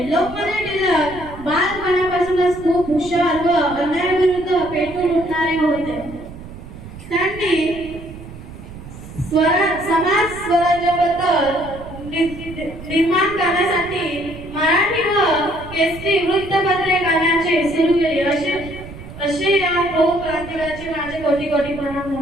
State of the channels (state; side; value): noise; right; rumble, 14 dB below the sound